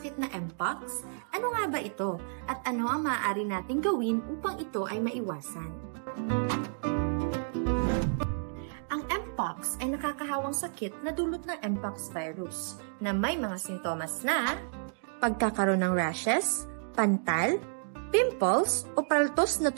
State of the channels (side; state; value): left; silent; digital silence